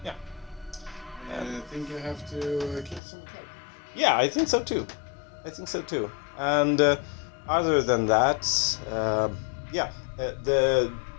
Yeah. I think you have to kill some characters. Yeah, I think so too. And other than that, the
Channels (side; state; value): right; drops out; at 3.0 s